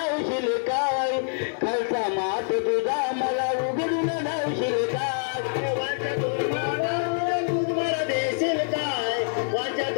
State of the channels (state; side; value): silent; right; 61 dB below the other